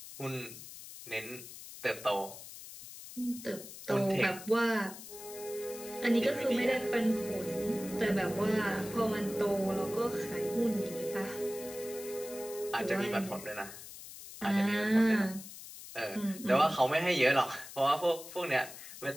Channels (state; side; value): noise; left; hiss, 14 dB below the sound